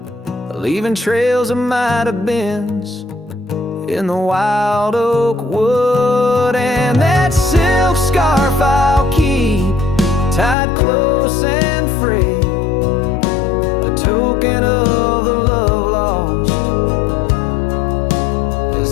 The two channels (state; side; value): drops out; right; at 10.6 s